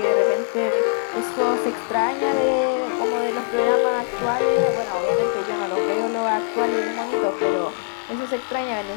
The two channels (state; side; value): silent; right; digital silence